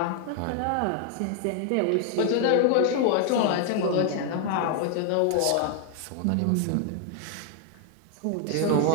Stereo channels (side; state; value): both; different; correlation 0.00